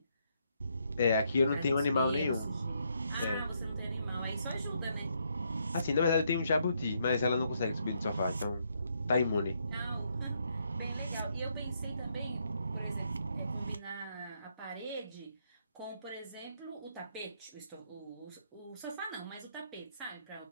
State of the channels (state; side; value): inverted; both; correlation -0.75